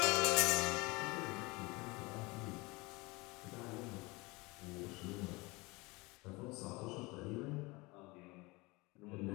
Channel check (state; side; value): quieter; right; 25.1 dB